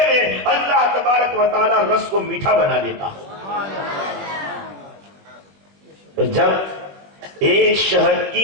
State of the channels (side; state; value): left; late; 21 ms